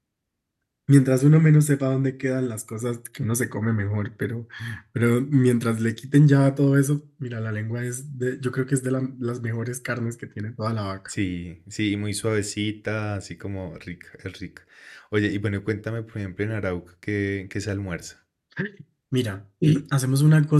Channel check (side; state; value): both; identical; correlation 1.00